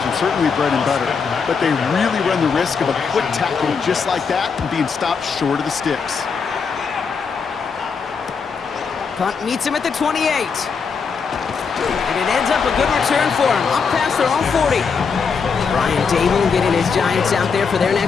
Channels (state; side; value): quieter; right; 5.6 dB